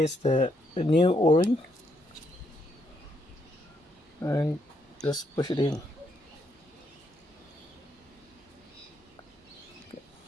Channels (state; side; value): normal; both; correlation 0.75